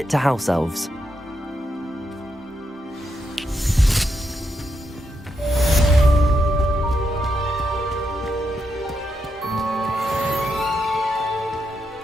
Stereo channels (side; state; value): both; normal; correlation 0.83